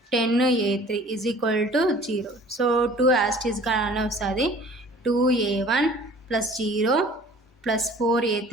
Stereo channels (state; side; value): normal; both; correlation 0.49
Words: 10a3 is equal to 0. So 2 as it is గానే వస్తుంది. 2a1 plus 0 plus